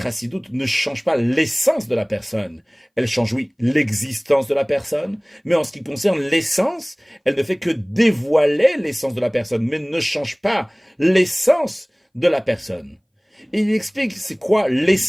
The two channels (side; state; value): both; identical; correlation 1.00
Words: ne change pas l'essence de la personne. Elle change, oui, l'existence de la personne, mais en ce qui concerne l'essence, elle ne fait que dévoiler l'essence de la personne, mais ne change pas l'essence de la personne. Et il explique c'est quoi